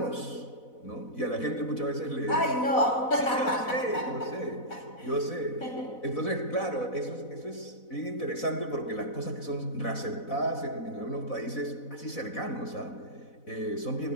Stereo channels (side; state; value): right; late; 4.0 ms